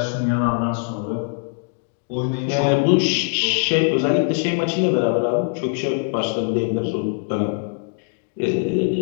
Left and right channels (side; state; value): right; silent; 61 dB below the other